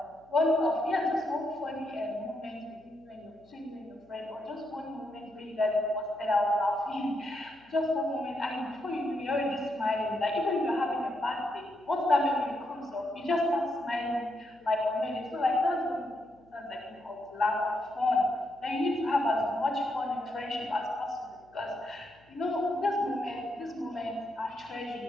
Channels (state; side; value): noise; left; hum, 30 dB below the sound